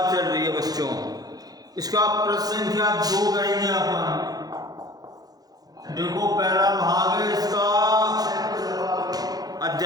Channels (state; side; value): late; left; 0.19 ms